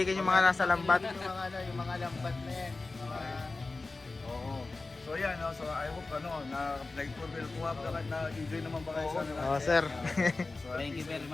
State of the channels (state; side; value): quieter; right; 3.5 dB